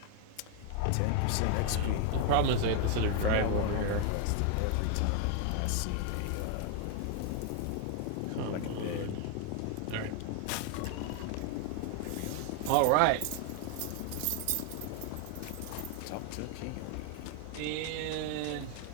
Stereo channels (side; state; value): both; different; correlation 0.00